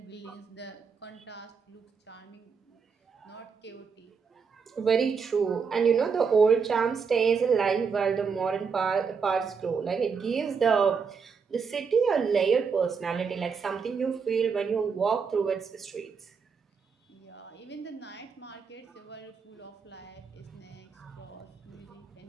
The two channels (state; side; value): quieter; left; 5.7 dB